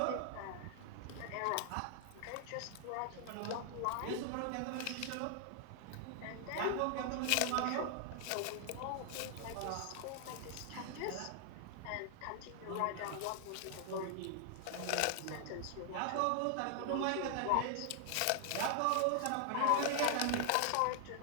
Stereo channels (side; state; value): both; different; correlation 0.00